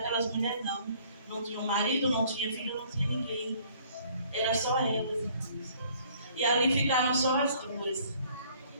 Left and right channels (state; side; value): inverted; both; correlation -0.58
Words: mulheres, não. Não tinha marido, não tinha filho, não tinha ninguém. Era só elas. E ali ficaram só as duas.